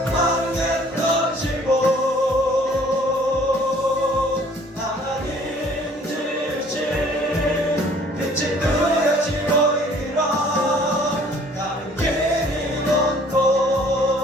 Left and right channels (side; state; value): both; normal; correlation 0.55